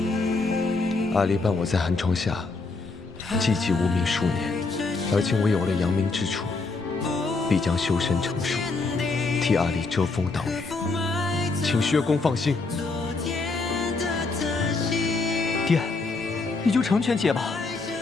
阿离伴我在寒窗下寂寂无名数年，而今我有了扬名之处，必将修身成术，替阿离遮风挡雨，请薛公放心。爹，你就成全姐吧。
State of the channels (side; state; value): right; quieter; 3.8 dB